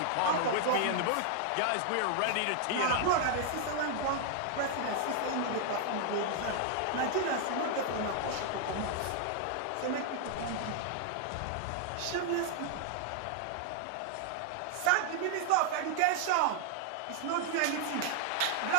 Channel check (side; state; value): both; different; correlation 0.00